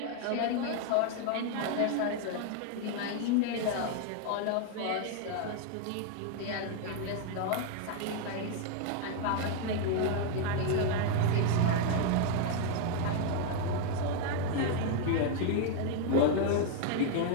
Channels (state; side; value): different; both; correlation 0.00